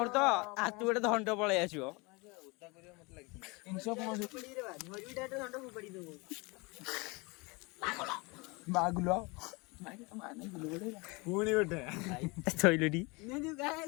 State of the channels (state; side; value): quieter; right; 27.2 dB